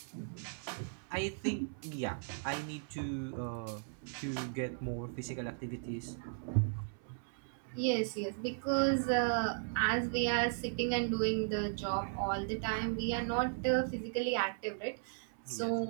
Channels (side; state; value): left; silent; 53 dB below the other